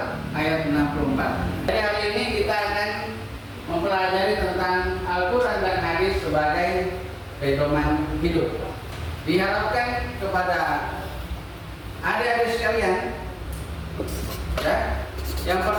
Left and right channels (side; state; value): both; identical; correlation 1.00